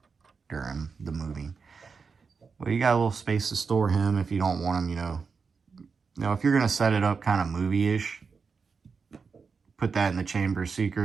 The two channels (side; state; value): left; quieter; 5.3 dB